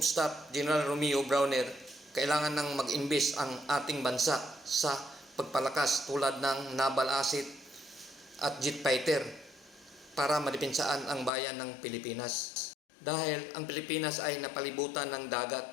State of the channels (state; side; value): drops out; right; at 11.3 s